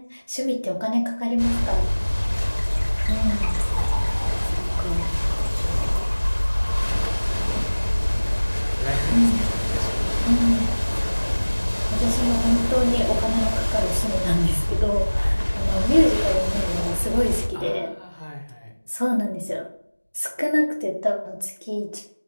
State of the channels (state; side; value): inverted; both; correlation -1.00